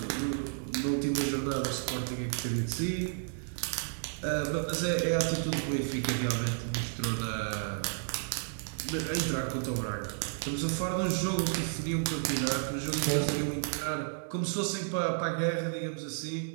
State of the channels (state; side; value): silent; left; 56 dB below the other